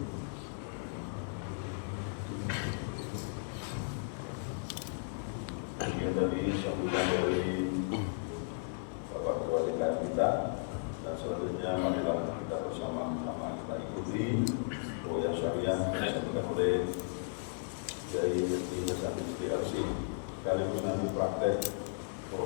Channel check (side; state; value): right; silent; digital silence